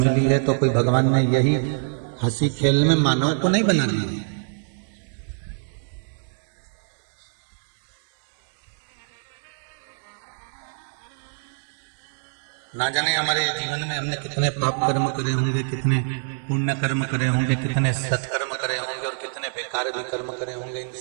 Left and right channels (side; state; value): left; silent; digital silence